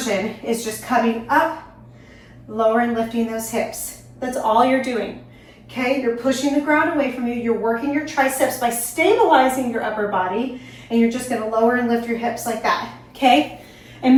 is just coming up, lower and lifting those hips. That's all you're doing. Okay, you're pushing the ground away from you. You're working your triceps by stabilizing your upper body, and you're just gonna lower and lift your hips like that, okay? And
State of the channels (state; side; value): identical; both; correlation 1.00